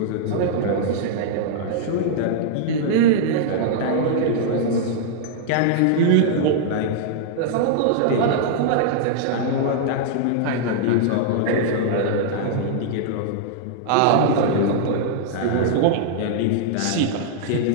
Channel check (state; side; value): different; both; correlation -0.01